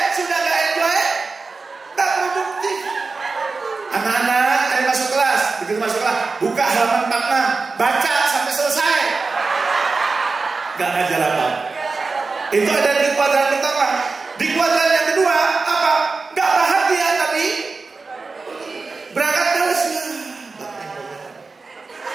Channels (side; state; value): left; quieter; 4.1 dB